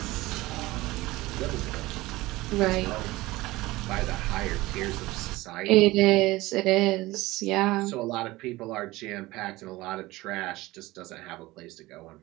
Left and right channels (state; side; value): quieter; left; 19.3 dB